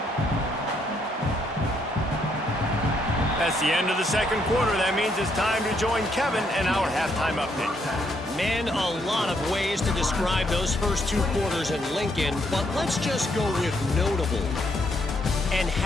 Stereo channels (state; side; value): normal; both; correlation 0.73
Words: That's the end of the second quarter. That means it's time to join Kevin and our halftime update. Man, a lot of ways to describe those first two quarters in Lincoln, but let's just go with notable. And